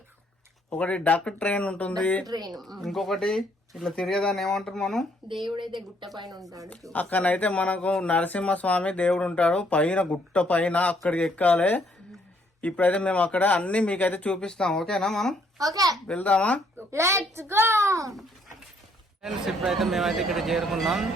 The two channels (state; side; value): normal; both; correlation 0.67